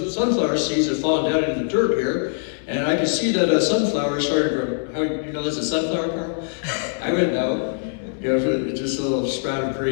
sunflower seeds have fallen down into the dirt here. And I can see that a sunflower started to grow." How you know there's a sunflower, Carl? I wouldn't know. Just a little sprout of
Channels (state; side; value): silent; right; 64 dB below the other